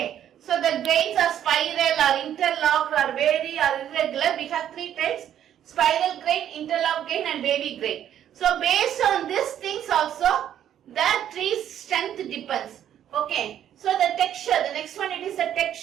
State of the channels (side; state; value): left; quieter; 10.5 dB